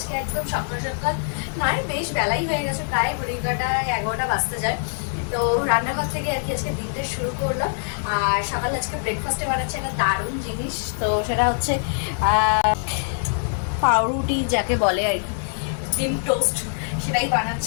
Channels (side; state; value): right; silent; 63 dB below the other